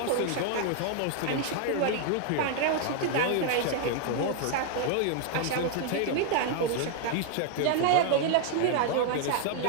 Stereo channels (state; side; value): different; both; correlation 0.00